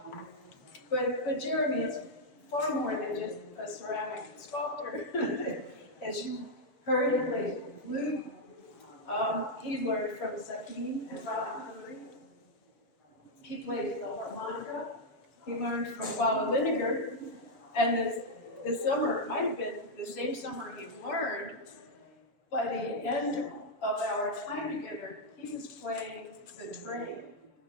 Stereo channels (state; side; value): late; right; 7.2 ms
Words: Jeremy is far more than just a ceramic sculptor. As you heard, he plays flute. He learned from Sakim and Robin Hungry. He plays the harmonica. He learned from Baba Lineker. And this summer, it might have been the same summer he learned, by the end of our time together, he was playing the train.